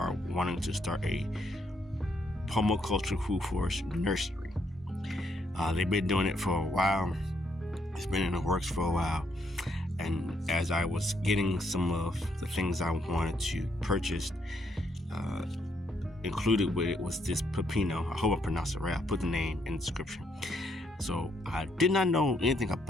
wanting to start a permaculture food forest nursery. They've been doing it for a while. It's been in the works for a while. And as I was getting some of the things I wanted to purchase, included with it was this Pino. I hope I pronounced it right. I put the name in the description. So I did not know anything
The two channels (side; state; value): both; normal; correlation 0.74